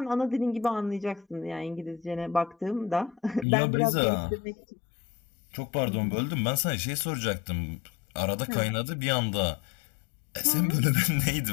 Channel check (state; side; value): drops out; right; at 3.5 s